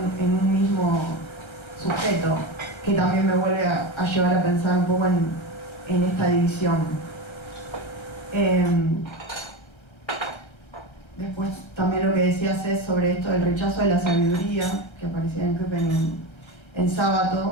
en un mismo sujeto, que también me vuelve a llevar a pensar un poco en esta división. Después también lo que decías es sobre esto del rechazo de la sabiduría, que aparecía en Köppen en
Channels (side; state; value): right; late; 1.3 ms